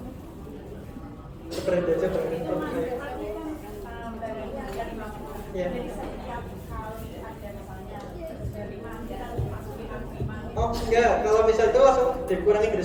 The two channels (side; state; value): both; identical; correlation 1.00